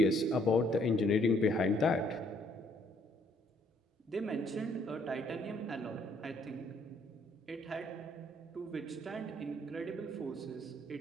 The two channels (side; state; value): both; normal; correlation 0.66